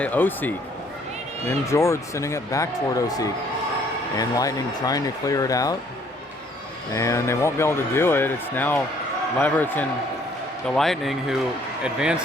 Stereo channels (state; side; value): normal; both; correlation 0.62